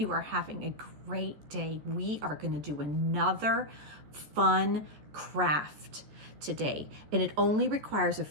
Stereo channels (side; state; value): left; late; 14 ms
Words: are having a great day. We are going to do another fun craft today, and it only requires a